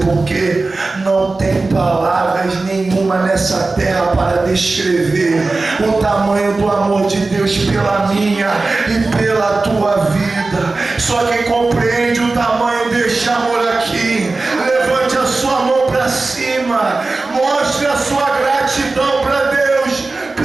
por quê? Não tem palavras nenhuma nessa terra para descrever o tamanho do amor de Deus pela minha e pela tua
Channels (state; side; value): quieter; left; 3.5 dB